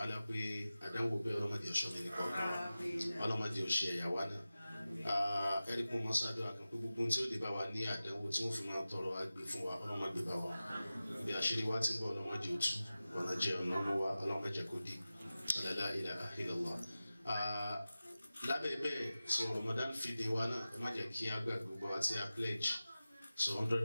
pé àdánwò bẹ́ẹ̀ ọlọ́mọdé ọ̀ṣọ́ mi nìkan ọlọ́mọdé ọ̀ṣẹ́ ẹ̀yàwó náà ẹni kún mọ́ sáájú àkàn pé gbogbo tí ó lè bá wa ní àdánwò tí wọ́n fi máa tọrọ agbè fún wa ọlọ́mọdé bá wa bí àṣírí wa ti ń bọ̀ ọlọ́mọdé òtú ọ̀nà jẹ́ ọ̀nà ọmọ wa ọlọ́mọdé kò dé la ilaha illallah. Lábẹ́ bẹ́ẹ̀ so Ramadan feeding wa náà ẹ má jẹ́ kí á gbàgbé gbogbo wa tí a pledge so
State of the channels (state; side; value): inverted; both; correlation -0.95